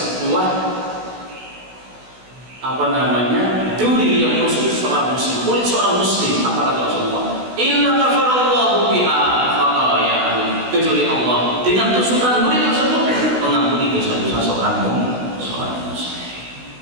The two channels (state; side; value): late; left; 16 ms